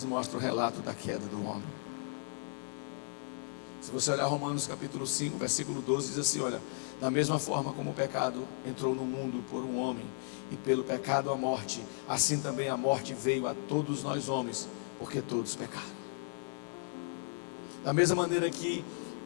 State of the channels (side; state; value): right; silent; 54 dB below the other